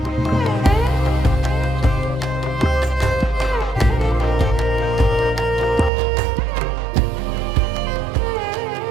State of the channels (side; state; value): left; drops out; at 5.9 s